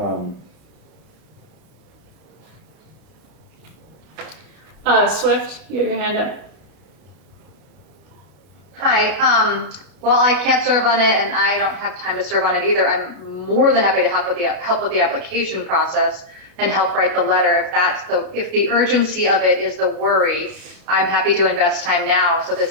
Swift, you have your hand up. Hi, well, I can't serve on it and I don't have time to serve on it either. I'm more than happy to help with the application process and help write the letter. If the urgency of it is the worry, I'm happy to invest time now so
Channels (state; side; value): late; left; 32 ms